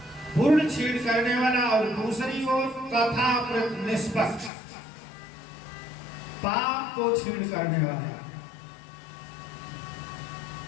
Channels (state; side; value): drops out; right; at 4.5 s